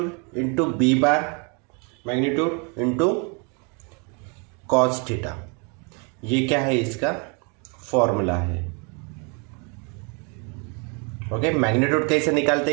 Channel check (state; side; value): quieter; left; 34.5 dB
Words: into B bar magnitude into cos theta. ये क्या है, इसका फॉर्मूला है। ओके, मैग्नीट्यूड कैसे निकालते